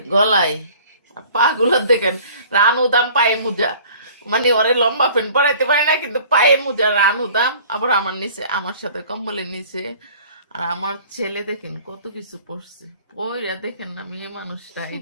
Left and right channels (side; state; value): both; inverted; correlation -0.49